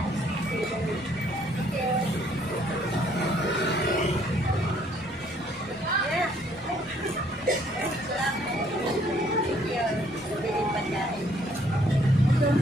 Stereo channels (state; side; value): normal; both; correlation 0.64